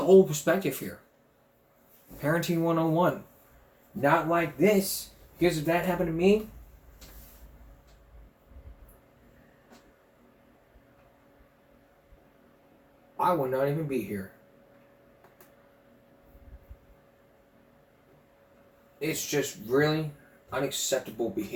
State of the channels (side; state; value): both; identical; correlation 1.00